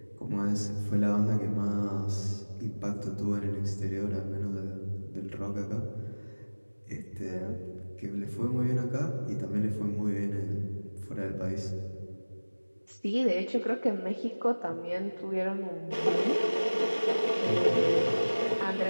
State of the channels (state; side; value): inverted; both; correlation -1.00